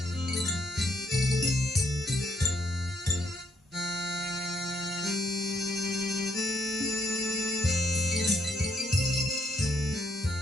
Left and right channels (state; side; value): normal; both; correlation 0.73